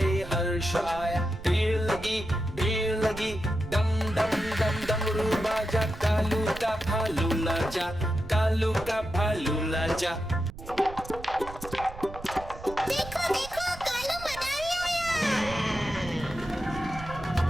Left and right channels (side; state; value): right; noise; rumble, 14 dB below the sound